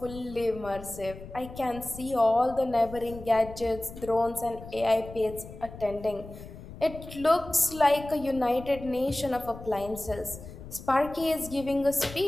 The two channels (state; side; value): noise; left; rumble, 14 dB below the sound